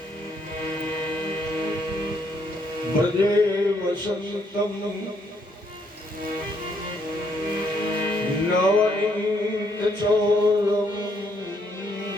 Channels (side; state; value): both; normal; correlation 0.71